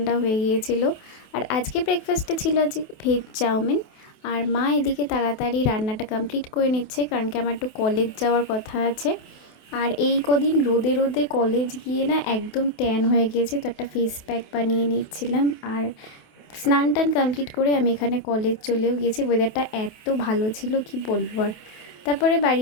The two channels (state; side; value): late; right; 28 ms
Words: হয়ে গিয়েছিল। আর আজকে ব্রেকফাস্টে ছিল আজকে ভেজ চাউমিন। আর মা এদিকে তাড়াতাড়ি রান্নাটা কমপ্লিট করে নিচ্ছে, কারণ কি আমার একটু কলেজ যাওয়ার কথা আছে। আর এই কদিন রোদে রোদে কলেজ গিয়ে না একদম ট্যান হয়ে গিয়েছে, তো একটা ফেস প্যাক বানিয়ে নিচ্ছিলাম। আর স্নান টান কমপ্লিট করে আমি এখানে কলেজ চলেও গিয়েছি। ওয়েদারটা এত ভালো ছিল কি বলবো আর। তারপরে বাড়ি